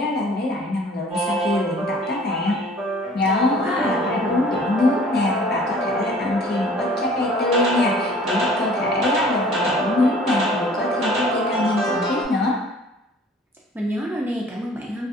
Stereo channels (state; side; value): normal; both; correlation 0.51